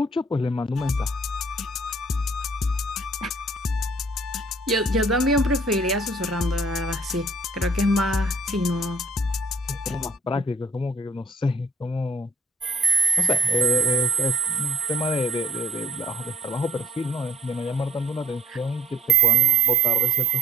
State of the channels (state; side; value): normal; both; correlation 0.61